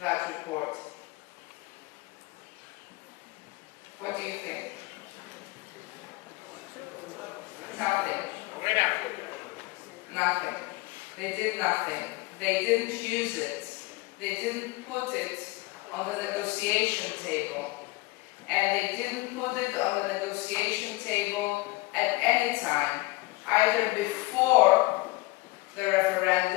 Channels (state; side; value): quieter; right; 22.2 dB